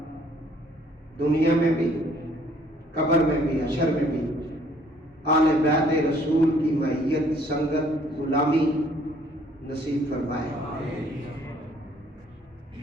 دنیا میں بھی، قبر میں بھی، حشر میں بھی آل بیت رسول کی معیت، سنگت، غلامی نصیب فرمائے۔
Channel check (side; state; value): both; normal; correlation 0.61